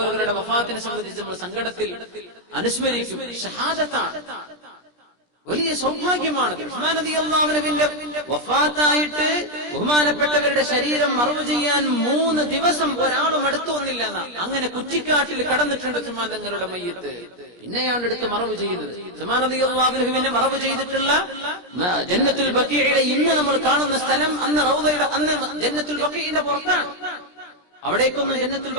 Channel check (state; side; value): late; right; 23 ms